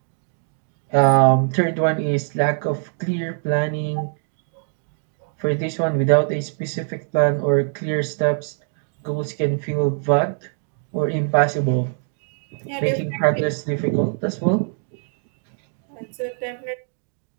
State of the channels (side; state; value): left; silent; 58 dB below the other